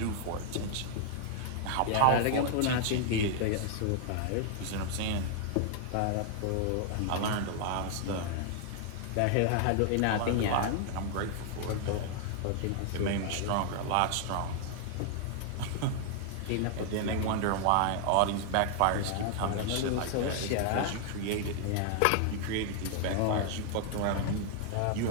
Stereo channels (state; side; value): different; both; correlation 0.00